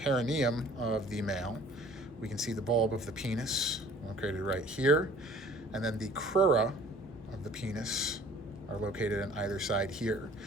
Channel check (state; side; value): normal; both; correlation 0.52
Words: of the male, we can see the bulb of the penis located right here, and then the crura of the penis are located on either side here.